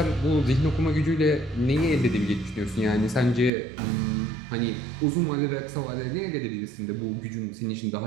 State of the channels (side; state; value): left; drops out; at 3.5 s